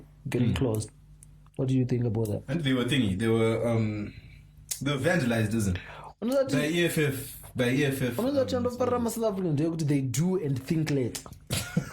getting closed. What do you think about that? And they were they were vandalized, isn't it? The EFF. They do and think late.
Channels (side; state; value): both; identical; correlation 1.00